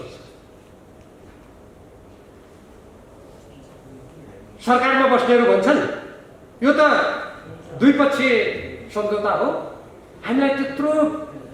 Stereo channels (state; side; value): identical; both; correlation 1.00